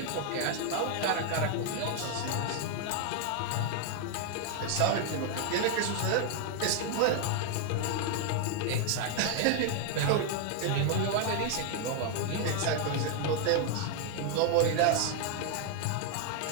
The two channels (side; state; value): both; different; correlation 0.00